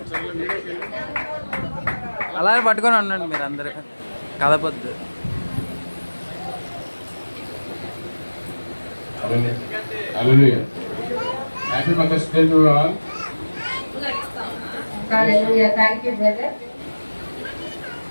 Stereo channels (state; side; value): inverted; both; correlation -1.00